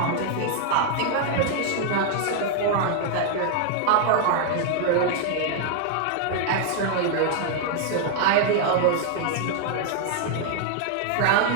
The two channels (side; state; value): both; different; correlation 0.00